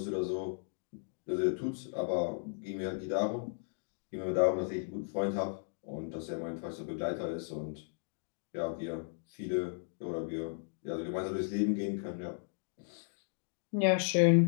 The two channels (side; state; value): right; silent; digital silence